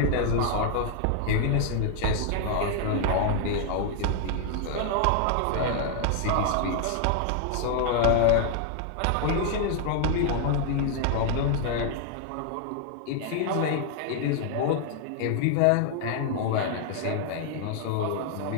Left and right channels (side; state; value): both; different; correlation 0.00